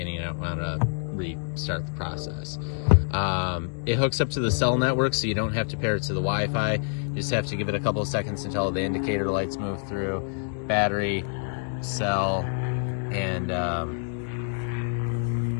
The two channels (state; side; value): silent; right; 60 dB below the other